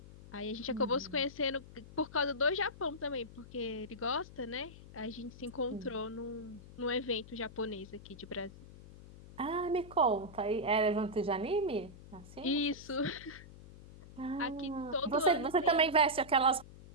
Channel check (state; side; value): noise; left; hum, 17 dB below the sound